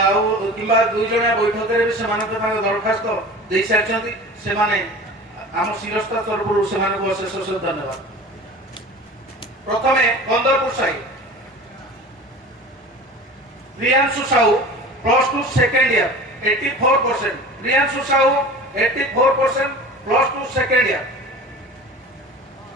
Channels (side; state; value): both; normal; correlation 0.37